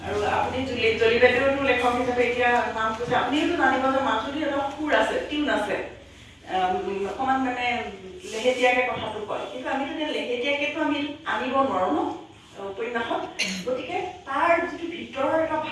আৰু আপুনি জলি বাইদেউতো লেখক হিচাপে এতিয়া নাম কৈছে আপুনিওতো জানিব যে মাজুলীৰ এটা সুৰ আছে টিউন আছে অকণমান মানে লেহেতীয়াকৈ কথাটো কয় কিন্তু আমিতো এতিয়া লেহেতীয়াকৈতো আমি আনিব নোৱাৰোঁ ন উপন্যাসত গতিকে তাৰ যিটো ভিতৰৰ এটা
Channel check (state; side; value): identical; both; correlation 1.00